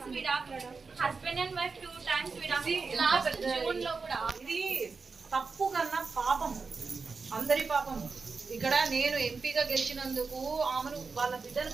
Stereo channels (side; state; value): left; quieter; 4.6 dB